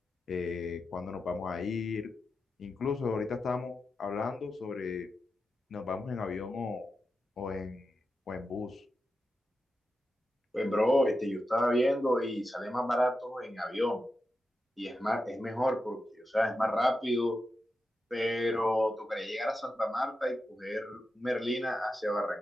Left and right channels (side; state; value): both; normal; correlation 0.89